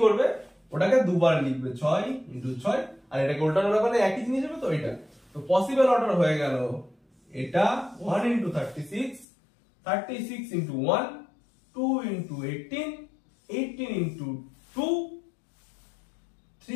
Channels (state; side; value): drops out; right; at 9.2 s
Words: করবে, ওটাকে দুবার লিখবে 6 ইন্টু 6, আর এটাকে উল্টানো ব্যাপারে একই জিনিস হবে। তো এটা তো পসিবল অর্ডার হয়ে গেল, এটা 1 into 36, 36 into 1, 2 into 18, 18 into 2,